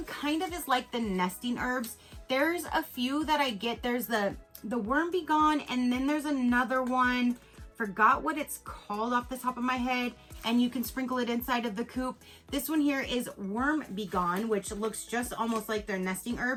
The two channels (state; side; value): identical; both; correlation 1.00